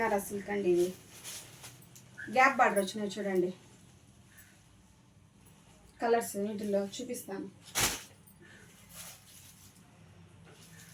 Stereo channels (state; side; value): identical; both; correlation 1.00